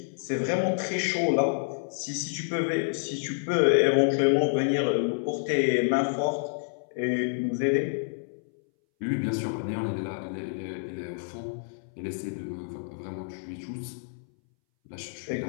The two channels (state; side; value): silent; right; 59 dB below the other